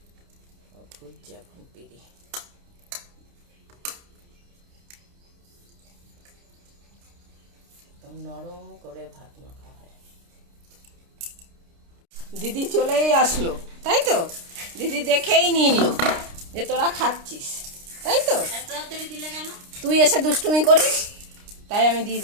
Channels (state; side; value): late; left; 29 ms